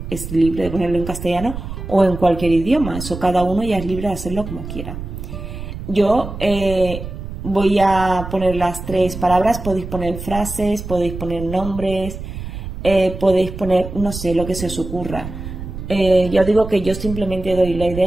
es libre de ponerlo en castellano o en cualquier idioma. Eso cada uno ya es libre de hacerlo como quiera. Yo voy a poner las tres palabras, podéis poner frases, podéis poner nombres, podéis poner, no sé, lo que se os ocurra. Ya digo que yo simplemente doy la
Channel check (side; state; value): right; noise; rumble, 9 dB below the sound